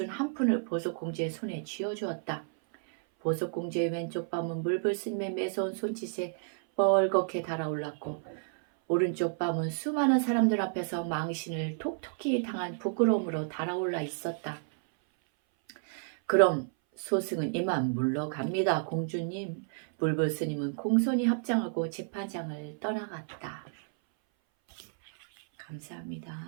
한 푼을 보석공주의 손에 쥐어주었다. 보석공주의 왼쪽 뺨은 물불스님의 매서운 손짓에 뻘겋게 달아올랐고 오른쪽 뺨은 수많은 사람들 앞에서 망신을 톡톡히 당한 부끄러움으로 달아올라 있었다. 그럼 소승은 이만 물러갑니다, 공주님. 물불스님은 공손히 합장하고 재판장을 떠나갔다. 감사합니다.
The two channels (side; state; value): left; silent; 57 dB below the other